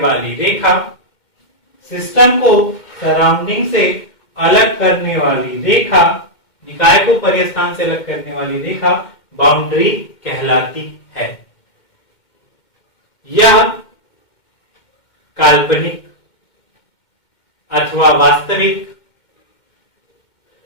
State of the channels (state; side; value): late; right; 2.1 ms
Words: रेखा, सिस्टम को सराउंडिंग से अलग करने वाली रेखा, निकाय को परिस्थान से अलग करने वाली रेखा बाउंड्री कहलाती है। यह काल्पनिक अथवा वास्तविक,